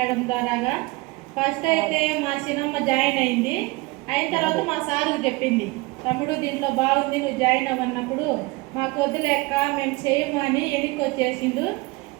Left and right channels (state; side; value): quieter; left; 23.6 dB